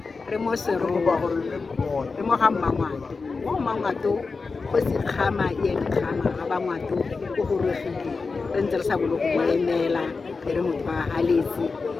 re mo seroa re mo ga mmangwato mo mmangwato go se kgama kgama ga ba ngwato go gorogile re ntse re sa bolo go emela re motho wa haletse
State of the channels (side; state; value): right; quieter; 4.4 dB